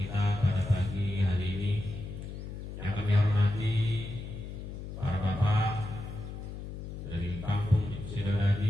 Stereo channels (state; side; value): noise; left; hum, 9 dB below the sound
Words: pada pagi hari ini. Yang kami hormati para bapak dari kampung